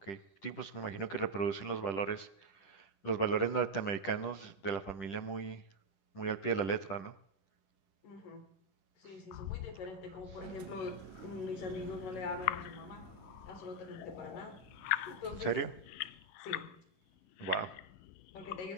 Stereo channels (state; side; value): late; right; 10 ms